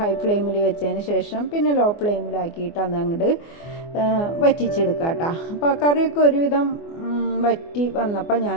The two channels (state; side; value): late; right; 24 ms